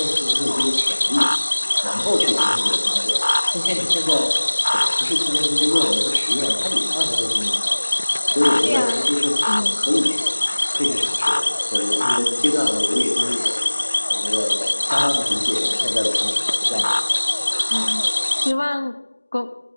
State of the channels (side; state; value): both; inverted; correlation -1.00